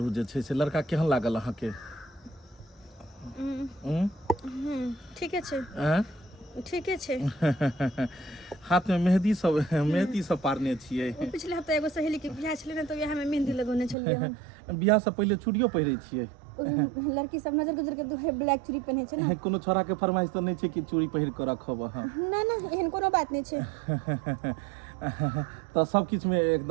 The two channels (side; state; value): left; drops out; at 14.0 s